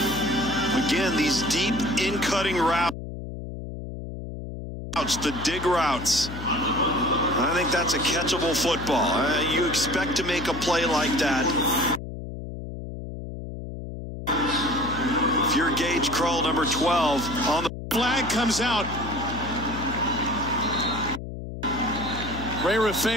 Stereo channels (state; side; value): noise; left; hum, 9 dB below the sound